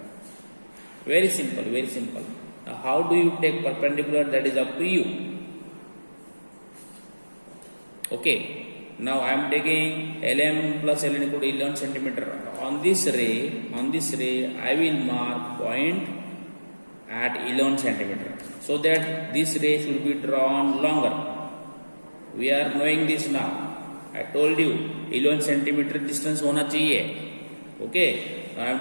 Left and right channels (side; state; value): both; inverted; correlation -1.00